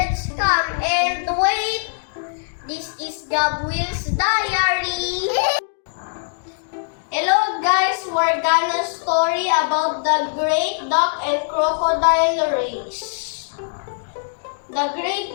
come and wait. This is Gabriel's diary. Hello guys, we're gonna story about the Great Duck and Crocodile Race. The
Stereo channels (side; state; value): right; silent; digital silence